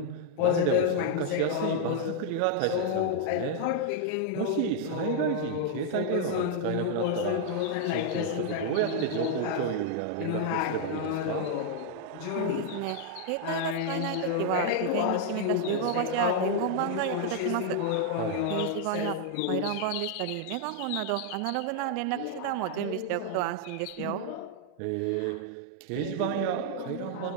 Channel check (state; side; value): different; both; correlation 0.00